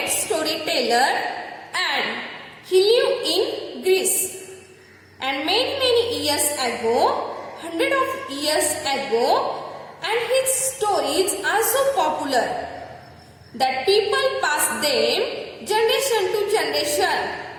storyteller and he lived in Greece. And many years ago, hundreds of years ago, and his stories are so popular that people pass them generation to generation.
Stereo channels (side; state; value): both; identical; correlation 1.00